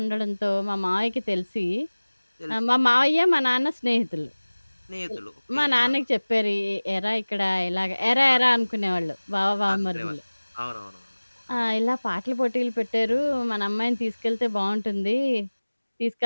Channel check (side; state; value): both; inverted; correlation -1.00